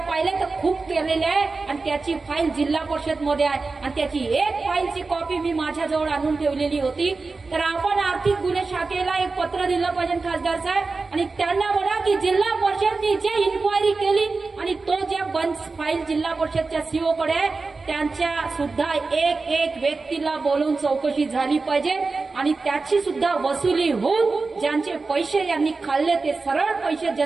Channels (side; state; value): left; quieter; 4.0 dB